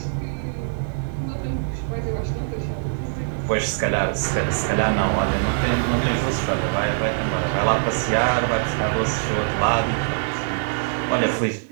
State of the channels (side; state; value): left; silent; 63 dB below the other